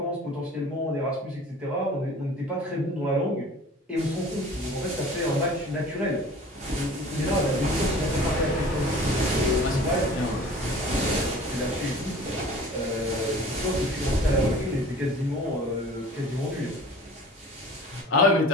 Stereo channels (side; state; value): both; normal; correlation 0.44